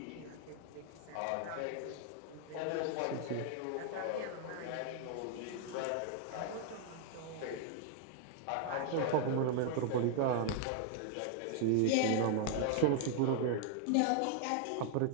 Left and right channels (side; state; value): both; different; correlation 0.00